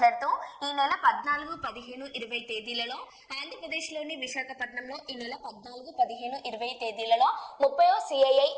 ఈ నెల 14, 15, 20 తేదీలలో ఆంధ్రప్రదేశ్లోని విశాఖపట్నంలో ఈ నెల 14, 15, 20 తేదీలలో 30వ సిఐఐ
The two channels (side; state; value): both; identical; correlation 1.00